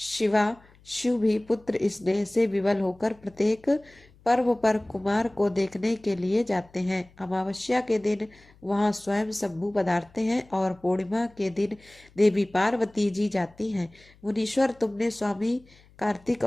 भी पुत्र स्नेह से विवल होकर प्रत्येक पर्व पर कुमार को देखने के लिए जाते हैं। अमावस्या के दिन वहां स्वयं शंभु पधारते हैं और पूर्णिमा के दिन देवी पार्वती जी जाती हैं। मुनीश्वर, तुमने स्वामी कार्तिक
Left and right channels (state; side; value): noise; left; hum, 28 dB below the sound